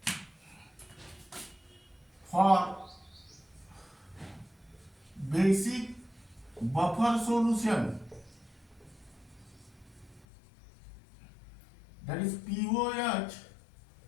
for basic buffer solution, that is pOH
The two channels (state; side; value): drops out; right; at 10.2 s